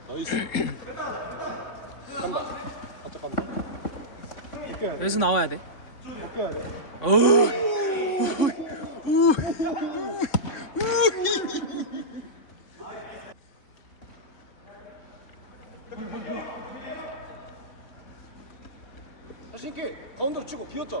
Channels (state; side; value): late; right; 3.6 ms